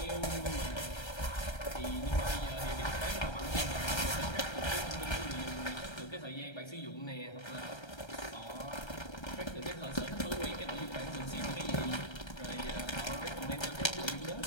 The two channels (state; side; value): late; right; 1.3 ms